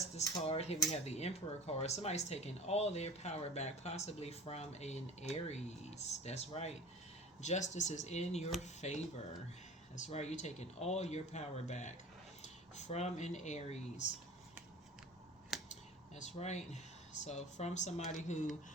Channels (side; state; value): both; normal; correlation 0.39